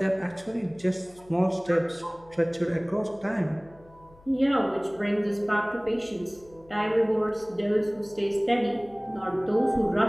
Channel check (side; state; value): left; noise; hum, 26 dB below the sound